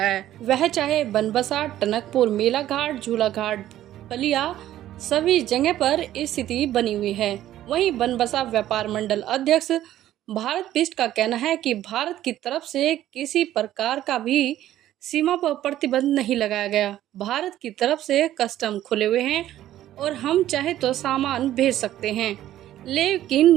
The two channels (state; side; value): quieter; left; 13.0 dB